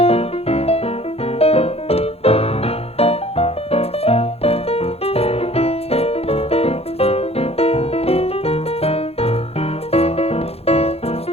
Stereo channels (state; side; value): late; right; 0.29 ms